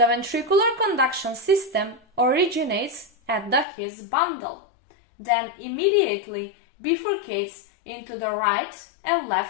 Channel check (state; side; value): drops out; right; at 3.7 s